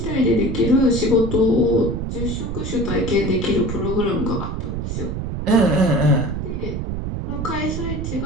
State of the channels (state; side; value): noise; right; rumble, 4 dB below the sound